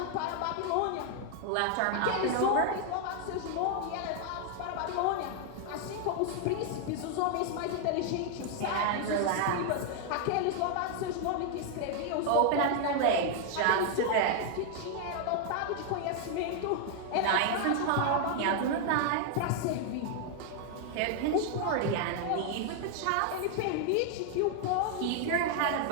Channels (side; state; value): both; different; correlation 0.00